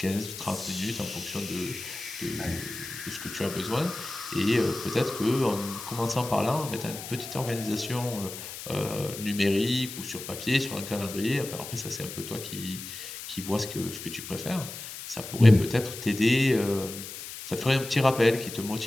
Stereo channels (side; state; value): left; noise; hiss, 10 dB below the sound